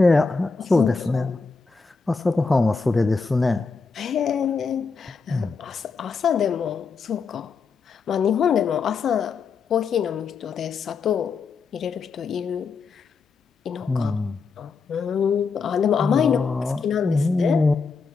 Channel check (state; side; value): quieter; right; 4.9 dB